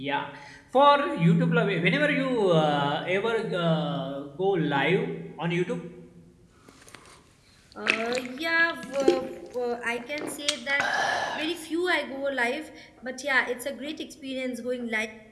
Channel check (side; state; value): both; identical; correlation 1.00